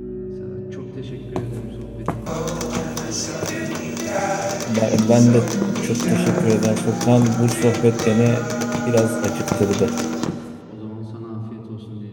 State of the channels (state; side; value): identical; both; correlation 1.00